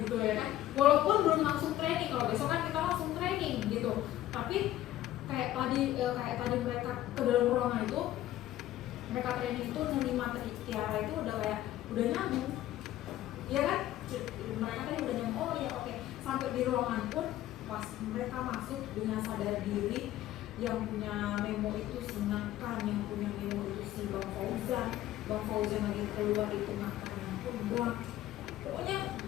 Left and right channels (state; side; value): quieter; right; 13.9 dB